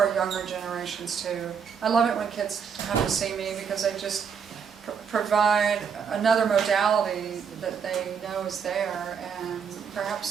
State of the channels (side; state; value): left; quieter; 6.7 dB